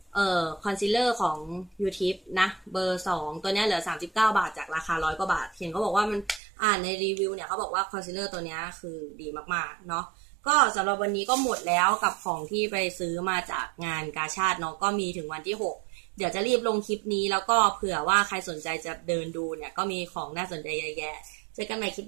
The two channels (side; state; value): left; drops out; at 6.4 s